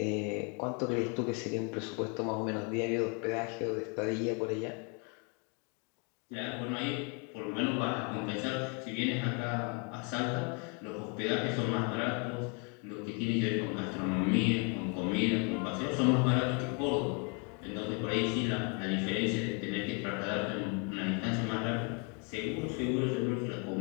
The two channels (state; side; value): quieter; right; 34.3 dB